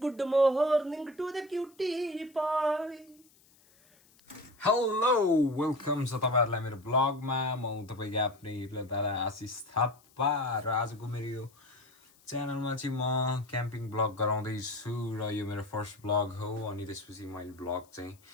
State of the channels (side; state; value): left; noise; hiss, 30 dB below the sound